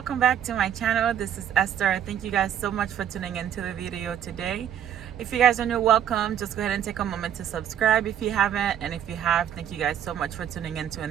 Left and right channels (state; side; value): quieter; left; 9.8 dB